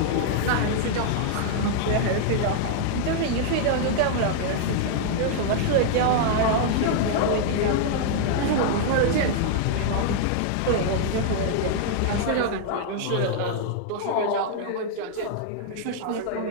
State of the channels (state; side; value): different; both; correlation -0.01